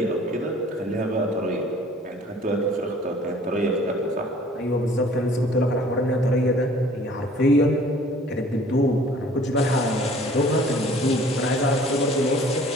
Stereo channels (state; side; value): normal; both; correlation 0.52